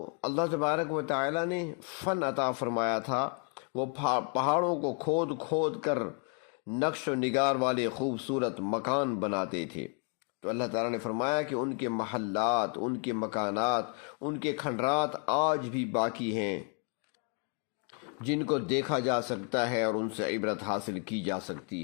اللہ تبارک و تعالی نے فن عطا فرمایا تھا، وہ پہاڑوں کو کھود کھود کر نقش و نگار والے خوبصورت مکان بناتے تھے۔ تو اللہ تعالیٰ نے فرمایا کہ ان کے محلات، ان کے مکانات، ان کے کھنڈرات آج بھی باقی ہیں، جن کو دیکھا جا سکتا ہے اور ان سے عبرت حاصل کی جا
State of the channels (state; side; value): quieter; right; 39.2 dB